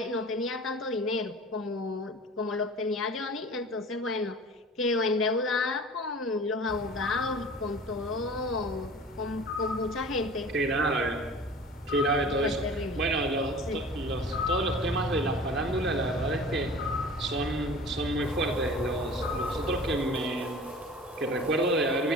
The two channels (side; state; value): both; normal; correlation 0.42